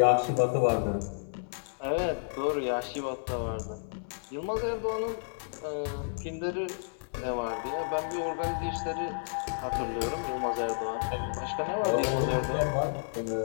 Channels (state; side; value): silent; right; 57 dB below the other